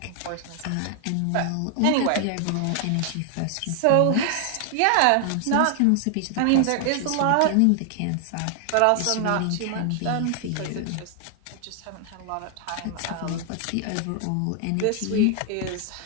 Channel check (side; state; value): both; different; correlation 0.00